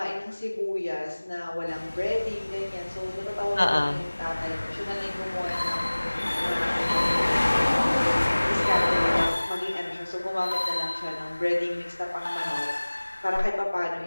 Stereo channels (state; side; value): inverted; both; correlation -1.00